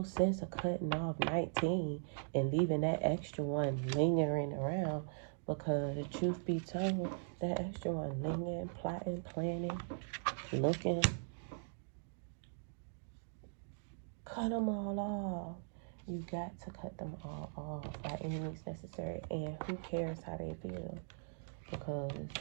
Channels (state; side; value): silent; left; digital silence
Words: sense of cutting off 19 and leaving that extra one lingering around, because truth be told, that extra one lingering, plotting, planning, looking, cut them all off. You got to cut them all off by any means necessary. And who cares how they feel? Because